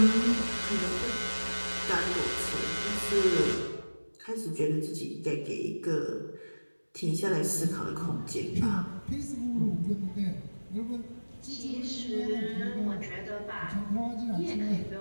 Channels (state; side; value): inverted; both; correlation -1.00